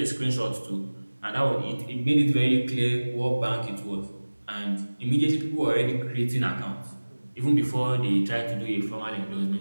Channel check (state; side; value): inverted; both; correlation -1.00